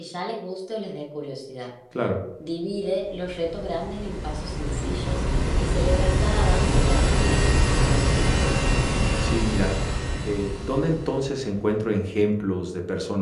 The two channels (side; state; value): both; identical; correlation 1.00